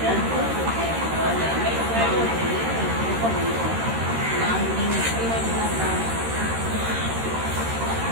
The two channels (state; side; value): late; left; 13 ms